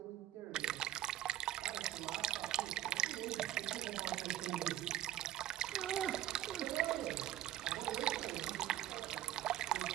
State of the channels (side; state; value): left; quieter; 13.2 dB